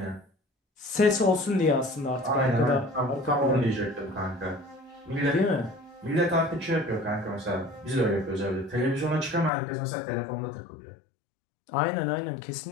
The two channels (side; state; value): right; drops out; at 9.5 s